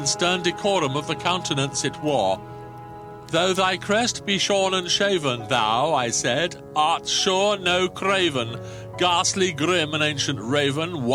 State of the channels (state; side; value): identical; both; correlation 1.00